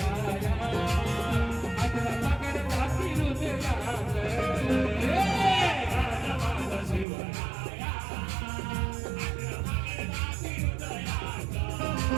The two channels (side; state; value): left; drops out; at 7.1 s